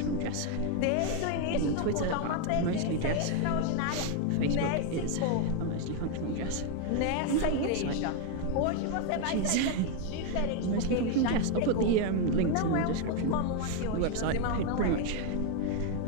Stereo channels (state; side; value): different; both; correlation 0.01